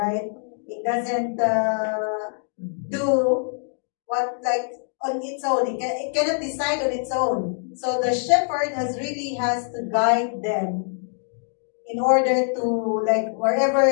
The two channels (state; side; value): silent; right; digital silence